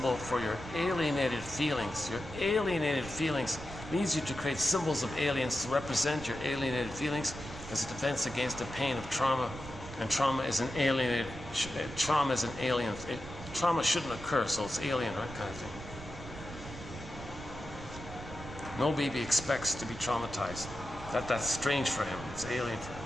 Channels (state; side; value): noise; right; rumble, 12 dB below the sound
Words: for your alienated feelings. Your alienated feelings leads you to create symbols of aliens to represent your alienated feelings as a defense against the pain of trauma. And trauma is an alienated, trauma is an alien. Trauma shouldn't occur, so it's alien, right, kind of thing. No baby expects to be traumatized. That's strange for him. It's alien for him.